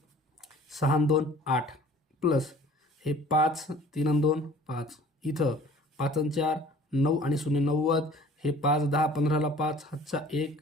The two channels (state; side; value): normal; both; correlation 0.49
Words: 6 आणि 2 8 प्लस हे 5 3 आणि 2 5, इथं 5 आणि 4 9 आणि 0 90, हे 5 10 15ला 5 हातचा 1